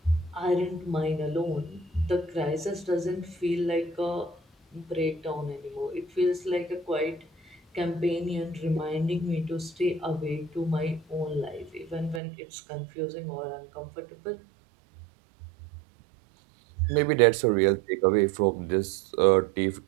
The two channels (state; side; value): drops out; left; at 12.2 s